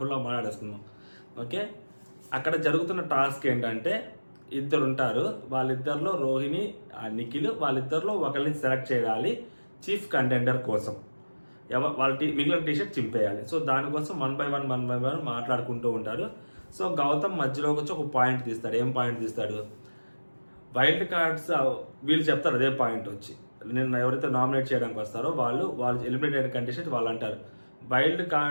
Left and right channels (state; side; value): inverted; both; correlation -1.00